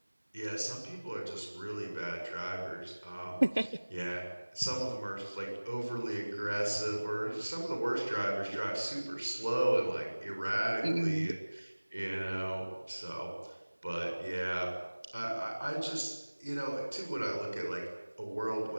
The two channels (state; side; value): inverted; both; correlation -1.00